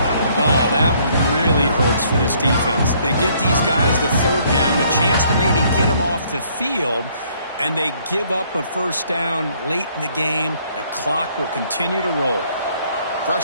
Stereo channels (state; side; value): inverted; both; correlation -0.64